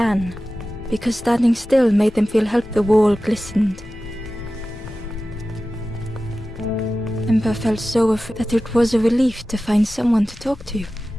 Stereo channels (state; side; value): normal; both; correlation 0.95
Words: because standing still made them feel help. The wall glistened. Ember felt so afraid that it was a relief to find someone to talk to.